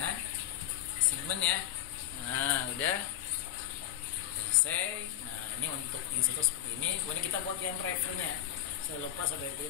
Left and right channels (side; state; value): right; quieter; 11.9 dB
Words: assignment ya. Nah, udah selesai. Nah, ini untuk instruktur seperti ini. Kemudian kita buat yang drivernya. Saya lupa saya